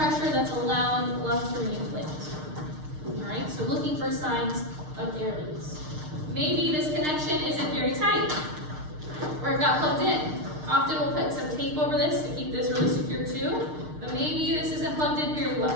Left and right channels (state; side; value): late; left; 6.6 ms